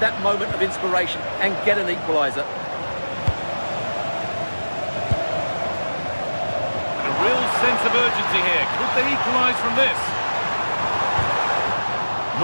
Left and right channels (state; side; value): inverted; both; correlation -1.00